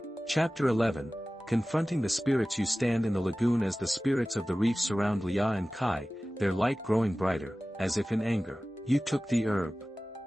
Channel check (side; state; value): both; normal; correlation 0.97